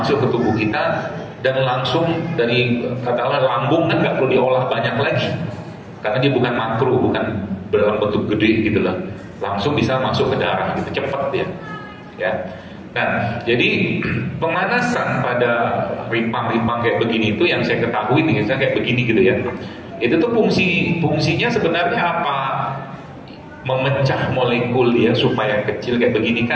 ke tubuh kita dan langsung dari katakanlah lambung kan nggak perlu diolah banyak lagi, karena dia bukan makro, bukan dalam bentuk gede gitu lah, langsung bisa masuk ke darah gitu, cepat dia. Ya. Nah, jadi pemanasan pada rimpang-rimpang kayak begini itu yang saya ketahui nih, misalnya kayak begini gitu ya. Itu tuh fungsinya sebenarnya apa? Memecah molekul dia supaya kecil kayak begini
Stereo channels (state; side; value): identical; both; correlation 1.00